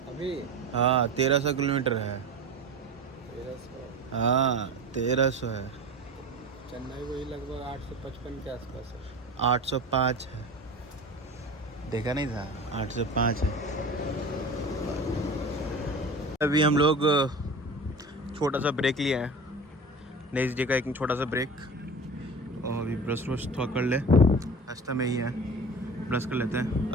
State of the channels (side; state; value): both; normal; correlation 0.34